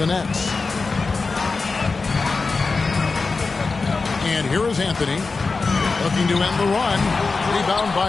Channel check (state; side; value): quieter; right; 4.2 dB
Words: Nets. And here is Anthony. Looking to end the run. Rebound